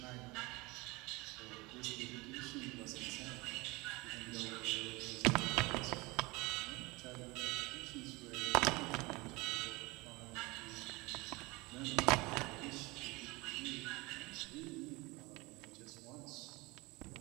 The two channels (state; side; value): quieter; left; 23.9 dB